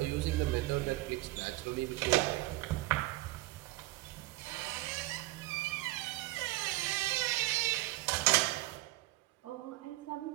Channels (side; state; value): left; quieter; 18.3 dB